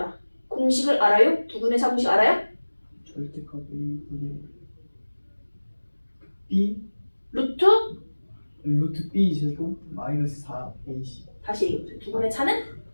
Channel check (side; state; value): both; inverted; correlation -1.00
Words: 공식을 알아요? 두분의 차 공식 알아요? 절대값 A분의 B 루트 B 제곱 마이너스 4AC. 다시 얘기해보세요. 두분의 차는?